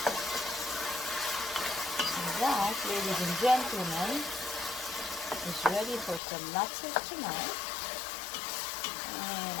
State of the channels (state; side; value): drops out; right; at 6.2 s